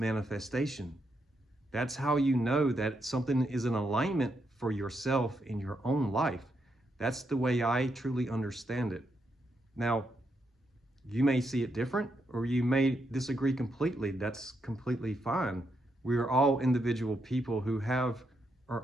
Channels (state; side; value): normal; both; correlation 0.81